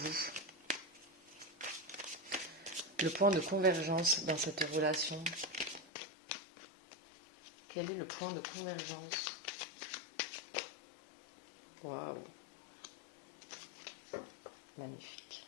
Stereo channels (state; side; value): drops out; right; at 5.9 s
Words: Le point de convergence dans cette relation. Quel est le point de convergence? Waouh. Magnifique.